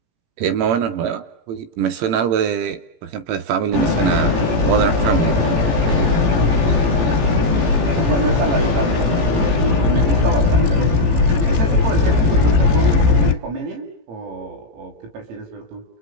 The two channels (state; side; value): late; left; 18 ms